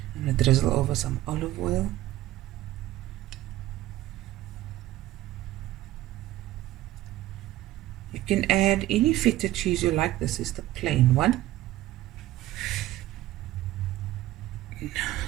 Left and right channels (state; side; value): quieter; left; 15.5 dB